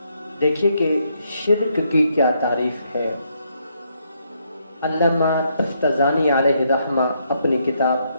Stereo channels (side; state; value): both; inverted; correlation -0.75